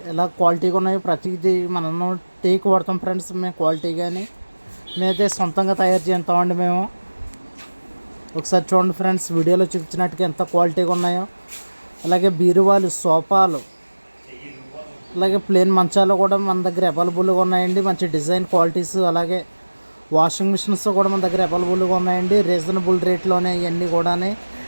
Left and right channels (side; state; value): both; inverted; correlation -1.00